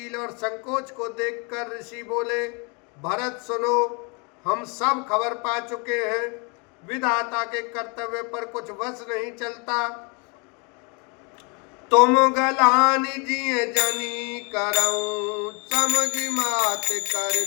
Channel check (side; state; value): right; quieter; 33.2 dB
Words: और संकोच को देखकर ऋषि बोले, भरत सुनो, हम सब खबर पा चुके हैं, विधाता के कर्तव्य पर कुछ वश नहीं चलता। तुम गलानी जिये जनी करऊं, समझ मात कर